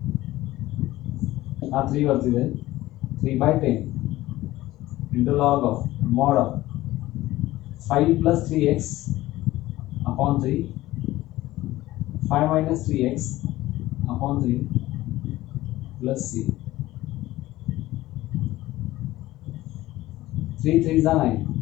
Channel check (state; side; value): quieter; right; 16.6 dB